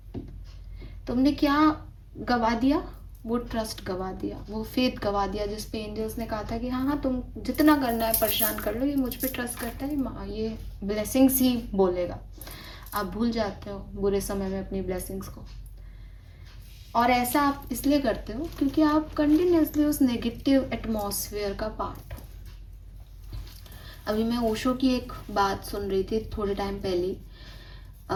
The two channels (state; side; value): identical; both; correlation 1.00